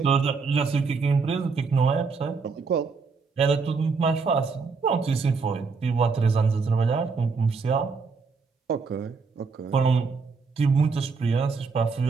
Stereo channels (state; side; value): quieter; left; 4.8 dB